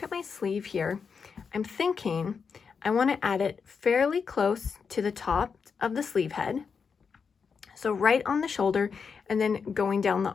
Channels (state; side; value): quieter; right; 5.8 dB